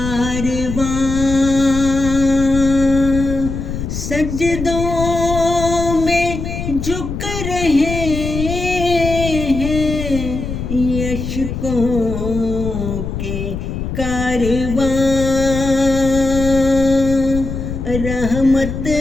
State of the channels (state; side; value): noise; left; rumble, 5 dB below the sound